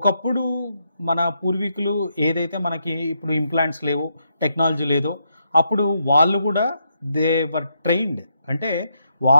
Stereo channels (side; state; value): both; inverted; correlation -0.79